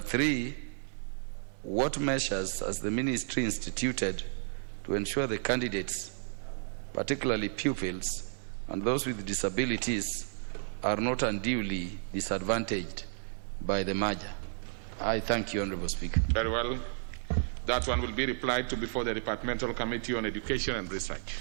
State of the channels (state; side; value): silent; left; 56 dB below the other